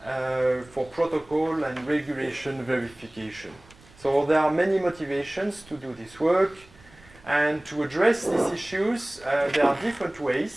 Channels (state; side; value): noise; right; rumble, 26 dB below the sound